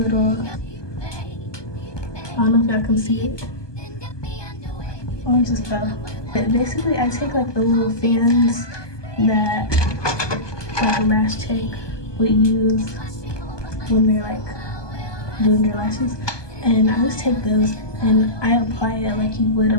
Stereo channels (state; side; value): late; right; 1.2 ms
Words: little, I don't know if y'all can see it. Oh, it just fell. But basically I take the little fans that a lash check would use when they're doing your lashes, and I just take those and I apply it like you would